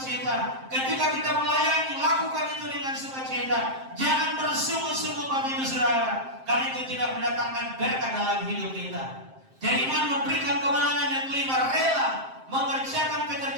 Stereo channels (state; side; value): late; left; 7.6 ms